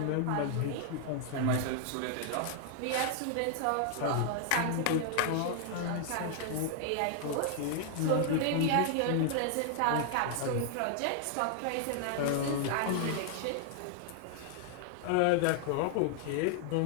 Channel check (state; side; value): different; both; correlation 0.00